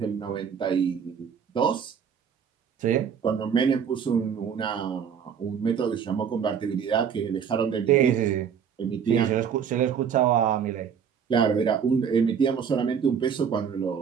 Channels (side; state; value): left; quieter; 7.4 dB